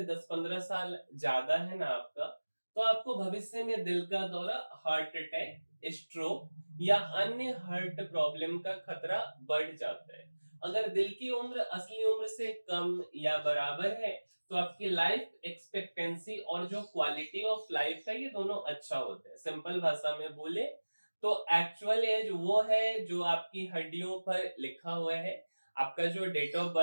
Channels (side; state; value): both; inverted; correlation -1.00